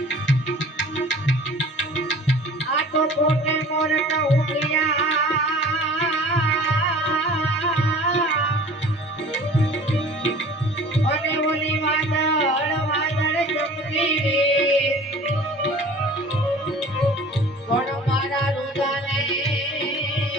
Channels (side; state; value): both; normal; correlation 0.45